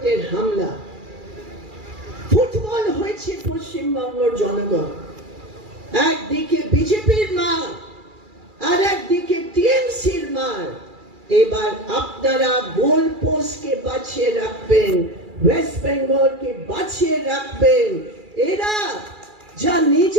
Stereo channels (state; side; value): late; left; 2.4 ms